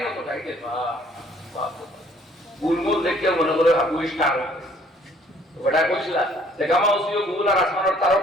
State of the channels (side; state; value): both; normal; correlation 0.59